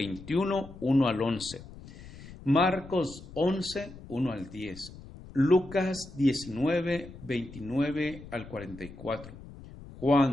1 al 11, Marcos 11, 1 al 10, Lucas 19, 29 al 44,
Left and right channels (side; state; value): left; noise; rumble, 16 dB below the sound